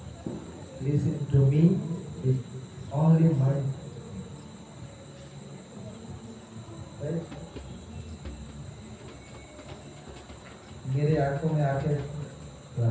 Listen to me with only mind. Right? मेरे आंखों में आके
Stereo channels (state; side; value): identical; both; correlation 1.00